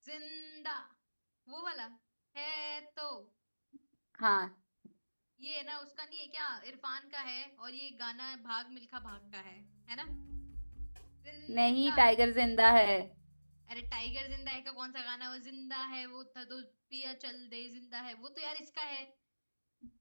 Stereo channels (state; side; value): inverted; both; correlation -1.00